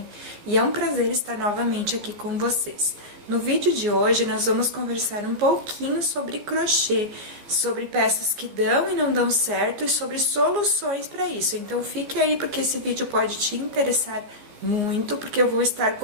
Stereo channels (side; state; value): left; late; 14 ms